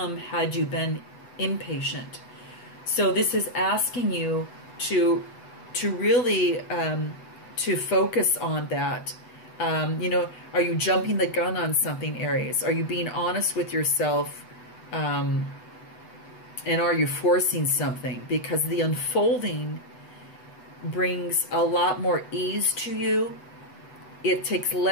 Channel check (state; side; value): late; right; 8.0 ms